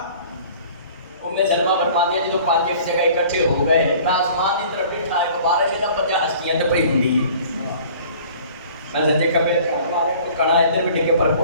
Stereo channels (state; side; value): inverted; both; correlation -0.49